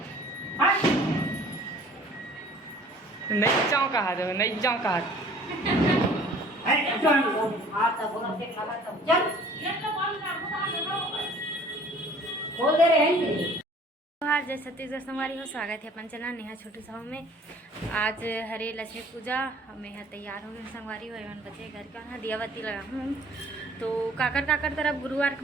नहीं जाऊँ कहा दो नहीं जाऊँ कहा बोल दे रहे हैं जय छत्तीसगढ़ संगवारी हो। स्वागत है अपन चैनल नेहा छोटू साहू में। आज हरे लक्ष्मी पूजा हमें यहाँ तैयार हो गए संगवारी हो एवं बच्चे घर का यहाँ दिया बत्ती लगा हूँ। तो काकर तरफ गुरुवार के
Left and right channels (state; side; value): normal; both; correlation 0.51